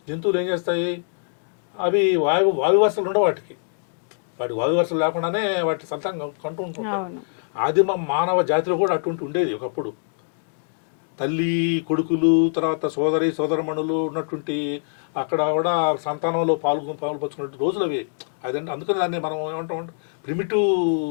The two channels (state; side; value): silent; right; digital silence